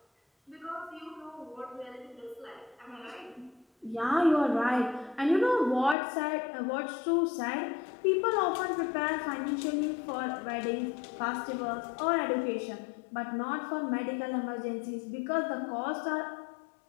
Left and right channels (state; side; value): drops out; right; at 6.0 s